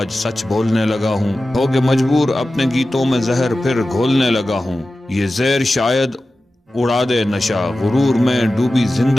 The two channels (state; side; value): normal; both; correlation 0.94